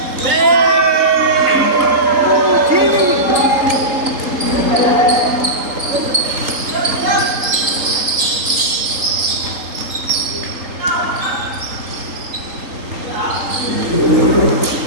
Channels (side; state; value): left; late; 3.8 ms